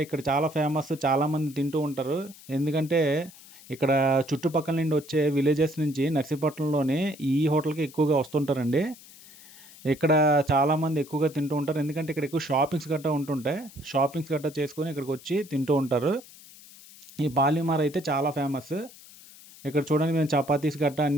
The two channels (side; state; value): left; noise; hiss, 21 dB below the sound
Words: ఇక్కడ చాలా ఫేమస్, చాలామంది తింటూ ఉంటారు. ఎందుకంటే ఇక్కడ చుట్టుపక్కల నుండి వచ్చే విలేజెస్ నుంచి నర్సీపట్నంలోని ఈ హోటల్కి ఎక్కువగా వస్తుంటారండి. ఇక్కడ చాలామంది ఎక్కువగా తింటూ ఉంటారు, ఎందుకంటే ఇక్కడ ఎక్కువ షాపింగ్స్ గట్రా ఉంటుంటాయి. షాపింగ్స్ గట్రా చేసుకొని ఇక్కడికి వచ్చి తింటూ ఉంటారు. ఈ పాలిమార్ అయితే చాలా ఫేమస్. ఇక్కడ చూడండి మేము చపాతీస్ గట్రా